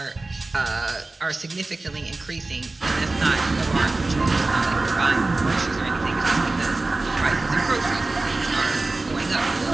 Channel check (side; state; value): left; quieter; 3.2 dB